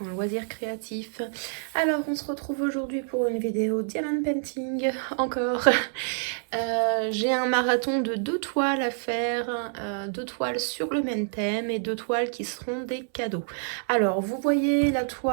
créatifs. Alors, on se retrouve aujourd'hui pour une vidéo Diamond Painting, encore. J'ai un marathon de 2 toiles à faire, 2 toiles sur le même thème et 2 toiles qui seront des cadeaux. Alors, vous voyez la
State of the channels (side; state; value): left; silent; 60 dB below the other